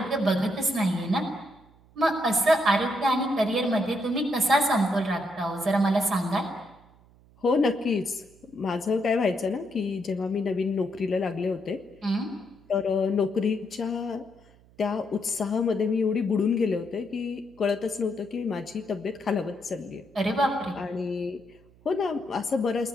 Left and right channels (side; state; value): right; noise; hum, 28 dB below the sound